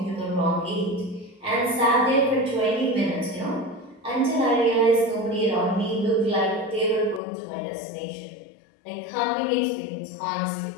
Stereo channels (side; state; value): right; drops out; at 7.2 s